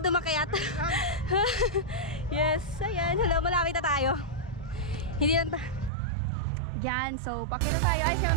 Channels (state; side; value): drops out; left; at 5.9 s